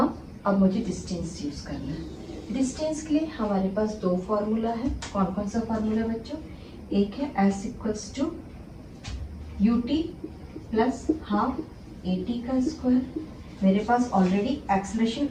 अब मुझे डिस्टेंस यूज करना है। डिस्टेंस के लिए हमारे पास दो फॉर्मूला है। कौन कौन सा फॉर्मूला बच्चों, एक है s equals to ut plus half at का स्क्वायर। मेरे पास ऑलरेडी एक्सेलरेशन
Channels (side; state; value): both; identical; correlation 1.00